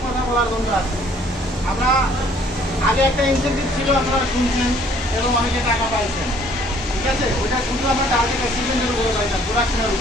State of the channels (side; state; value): both; normal; correlation 0.59